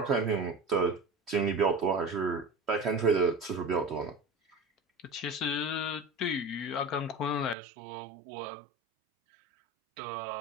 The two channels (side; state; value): left; drops out; at 7.6 s